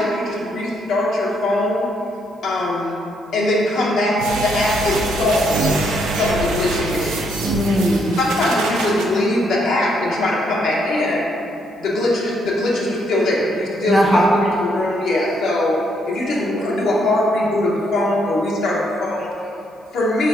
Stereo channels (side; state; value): both; normal; correlation 0.73